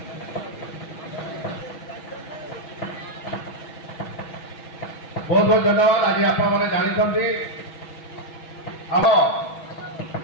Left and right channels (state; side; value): late; right; 6.2 ms